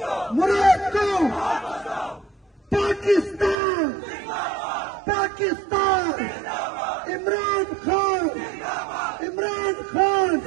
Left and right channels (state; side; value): drops out; left; at 3.6 s